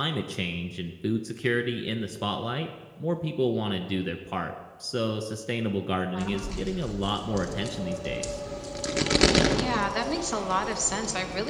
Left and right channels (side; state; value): both; identical; correlation 1.00